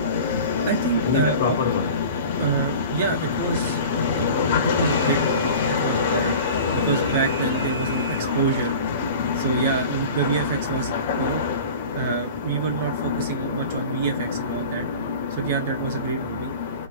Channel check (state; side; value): inverted; both; correlation -0.38